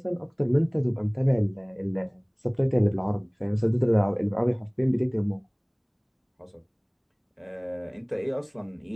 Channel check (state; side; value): identical; both; correlation 1.00